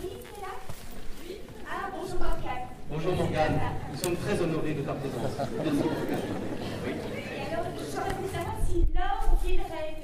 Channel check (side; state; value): both; identical; correlation 1.00